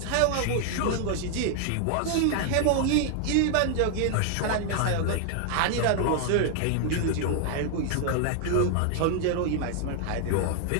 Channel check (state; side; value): different; both; correlation 0.00